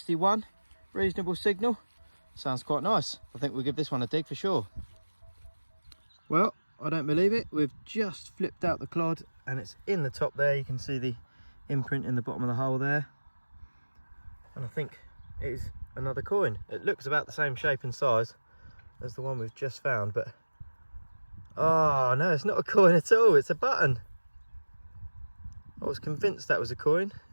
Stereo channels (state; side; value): inverted; both; correlation -1.00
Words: reasonable signal. Sounds quite nice. I think we'll give this one a dig for sure. Well, I don't believe it. We've just flipped out the clod and it's in the top there. You can see the imprint in the bottom of the hole there. And I think it is another coin. It looks about the same shape and size as the one we've just found, but oh no, it's not a coin at all, it's a button. I was convinced that was a coin.